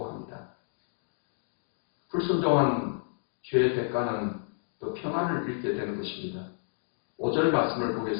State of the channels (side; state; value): right; silent; digital silence